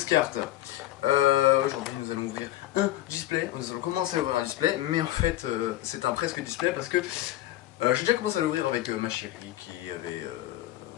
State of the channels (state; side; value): quieter; right; 15.1 dB